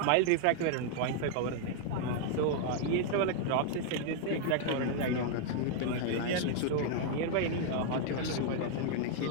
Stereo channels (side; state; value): both; different; correlation 0.00